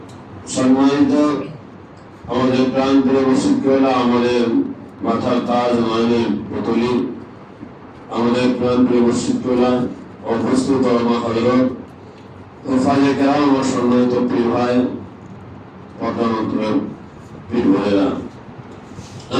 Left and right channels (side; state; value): both; identical; correlation 1.00